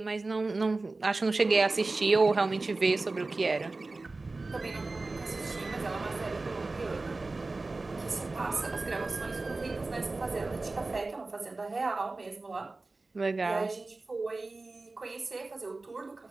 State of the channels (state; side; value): quieter; left; 3.4 dB